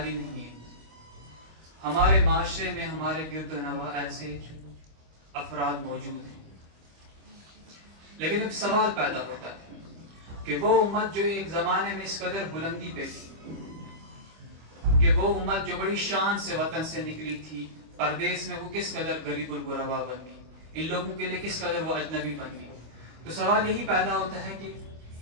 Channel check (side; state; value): left; late; 25 ms